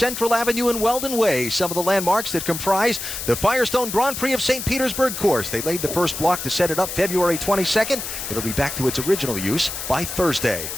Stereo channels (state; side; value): noise; left; hiss, 6 dB below the sound